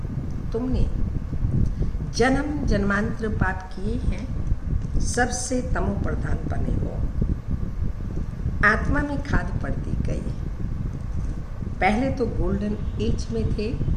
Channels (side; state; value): both; identical; correlation 1.00